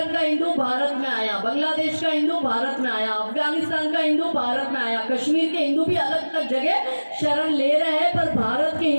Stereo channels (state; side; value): inverted; both; correlation -1.00